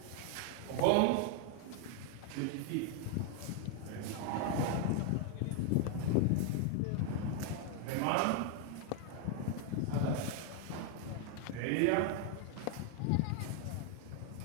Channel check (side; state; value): both; different; correlation 0.01